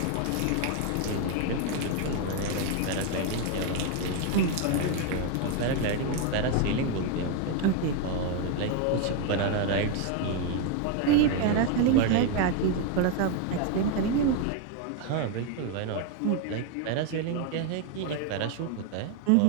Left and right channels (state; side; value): different; both; correlation 0.01